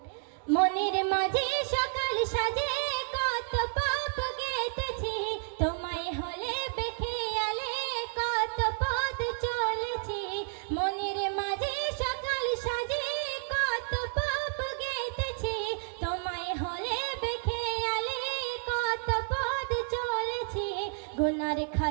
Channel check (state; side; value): silent; left; digital silence